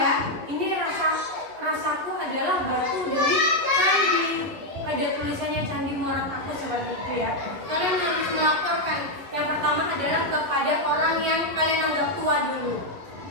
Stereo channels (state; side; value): late; left; 11 ms